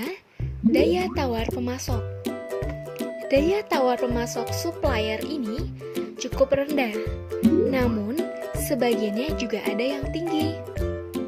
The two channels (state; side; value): identical; both; correlation 1.00